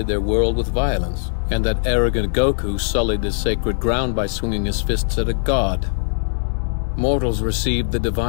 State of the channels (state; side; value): silent; right; digital silence